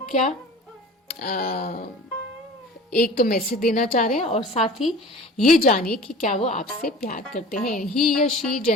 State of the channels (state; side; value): normal; both; correlation 0.41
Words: क्या एक तो मैसेज देना चाह रहे हैं और साथ ही ये जानिए कि क्या वो आपसे प्यार करते हैं. ही या शी